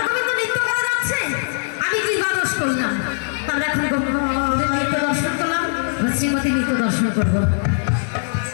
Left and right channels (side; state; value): right; silent; digital silence